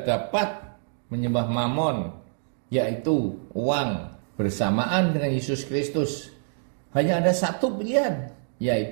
dapat menyembah Mamon, yaitu uang, bersamaan dengan Yesus Kristus. Hanya ada satu pilihan,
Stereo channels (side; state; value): left; silent; digital silence